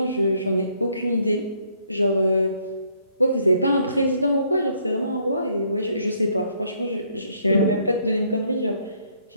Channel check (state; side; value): inverted; both; correlation -0.68